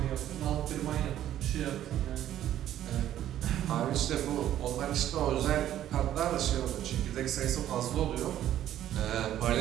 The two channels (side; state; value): left; quieter; 11.9 dB